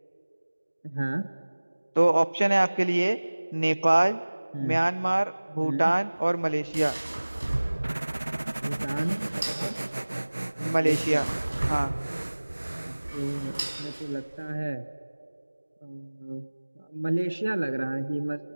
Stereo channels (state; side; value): inverted; both; correlation -1.00